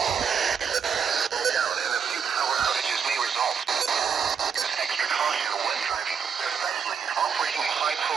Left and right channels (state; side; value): quieter; left; 6.8 dB